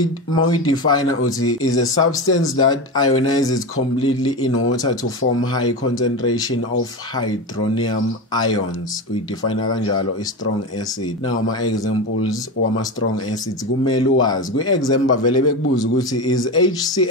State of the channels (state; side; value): normal; both; correlation 0.20